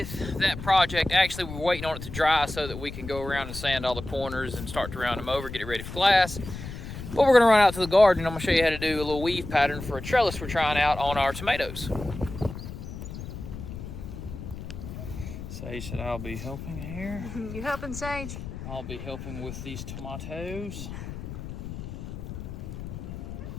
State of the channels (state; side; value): noise; left; rumble, 9 dB below the sound